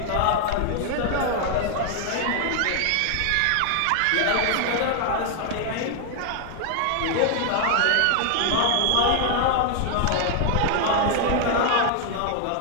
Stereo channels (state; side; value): different; both; correlation 0.00